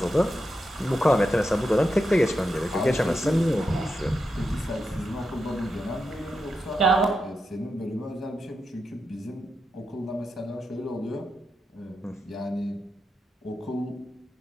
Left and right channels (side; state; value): both; normal; correlation 0.87